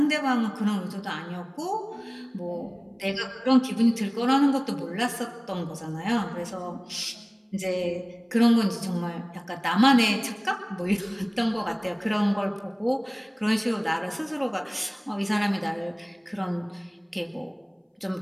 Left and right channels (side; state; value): both; identical; correlation 1.00